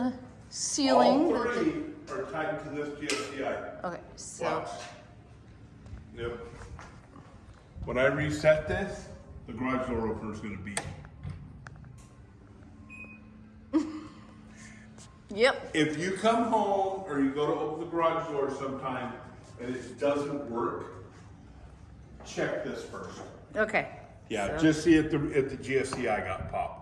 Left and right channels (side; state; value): both; identical; correlation 1.00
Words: ceiling. All three are tied to this GFCI. Okay, so Watch. Yep. When I reset this, the garage door opener is going to beep. yep. If you come home or you go to open the garage door sometime and it doesn't work, check this first. Okay. Yeah, So- just see if the GFCI got